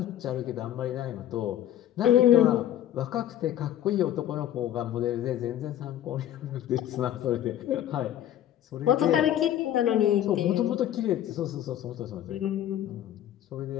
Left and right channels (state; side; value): quieter; right; 11.6 dB